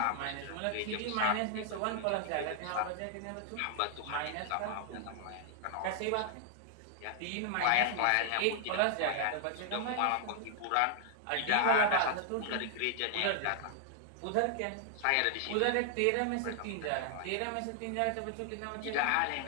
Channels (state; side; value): different; both; correlation 0.00